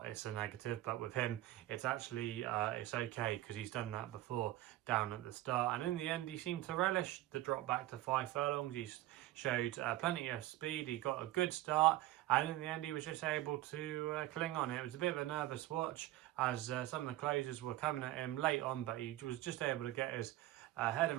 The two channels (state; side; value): quieter; left; 15.5 dB